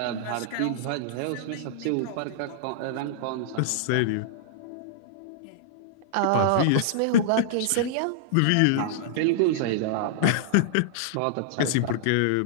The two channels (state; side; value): different; both; correlation -0.01